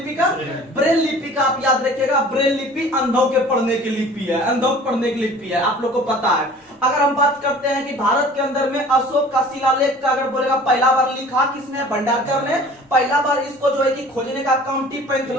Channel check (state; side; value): normal; both; correlation 0.46